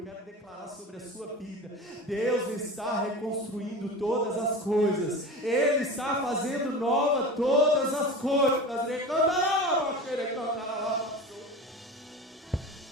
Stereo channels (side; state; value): both; normal; correlation 0.32